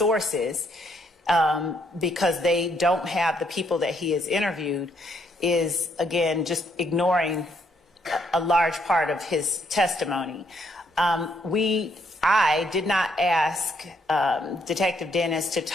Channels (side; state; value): both; normal; correlation 0.72